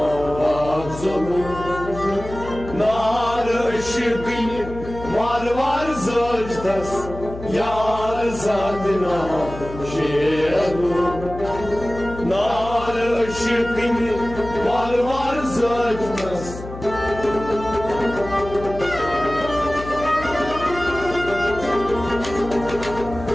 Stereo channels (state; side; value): noise; left; hum, 12 dB below the sound